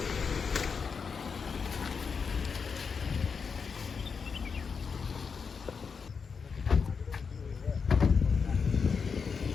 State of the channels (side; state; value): right; quieter; 5.7 dB